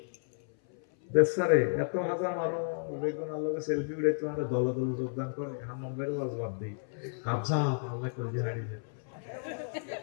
দেশারে এত হাজার মানুষ বেগুন আল্লাহকে সেলফি উঠে তোমার দল দল যোগদান করে, হাম্মাম ভাইয়ের ওয়াজ বাদ দিই, হাফসা আল্লাহ করে হারিয়ে যায়।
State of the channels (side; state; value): right; silent; 56 dB below the other